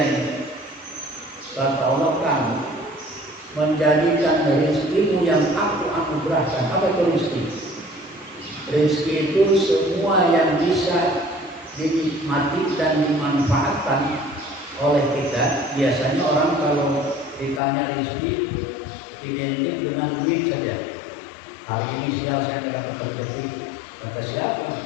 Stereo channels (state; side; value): drops out; right; at 17.6 s